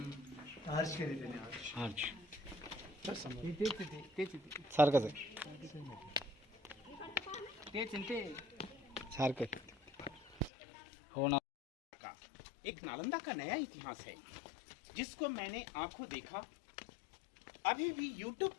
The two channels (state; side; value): drops out; right; at 10.5 s